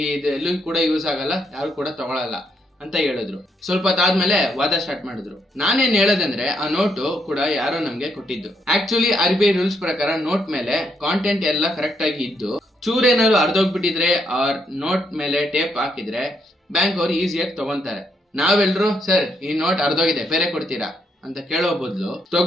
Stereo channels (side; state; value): both; normal; correlation 0.76